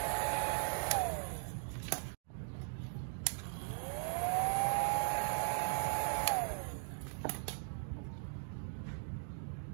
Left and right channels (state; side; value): silent; left; digital silence